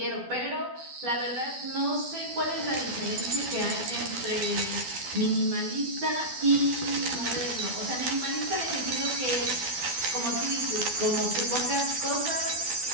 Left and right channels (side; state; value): left; late; 12 ms